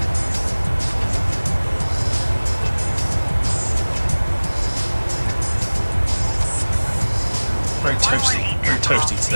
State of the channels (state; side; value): inverted; both; correlation -1.00